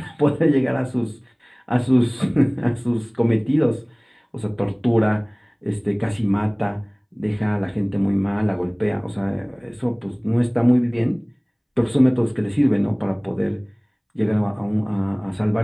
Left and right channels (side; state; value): both; identical; correlation 1.00